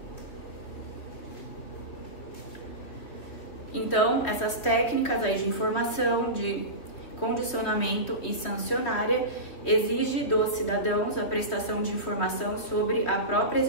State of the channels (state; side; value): late; right; 3.3 ms